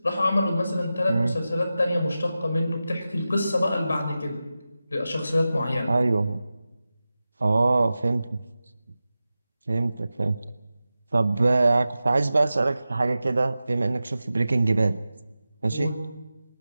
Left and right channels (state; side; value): inverted; both; correlation -0.94